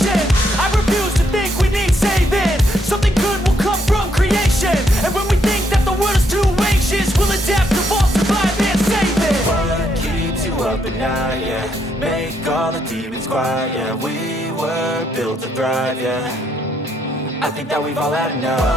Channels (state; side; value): normal; both; correlation 0.74